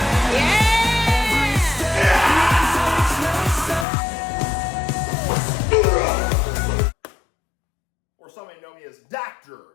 Or some may know me as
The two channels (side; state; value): right; drops out; at 3.9 s